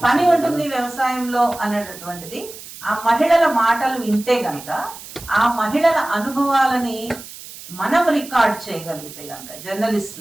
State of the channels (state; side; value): noise; right; hiss, 15 dB below the sound